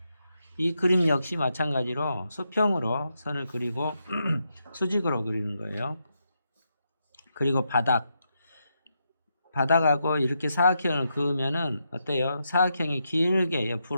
이 그림 역시 마찬가지로 수평으로 선을 그리고 수직으로 그리는 거예요. 그리고 바닥하고 이렇게 사각형을 그으면은 어때요? 사각형이 길게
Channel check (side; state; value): both; inverted; correlation -0.83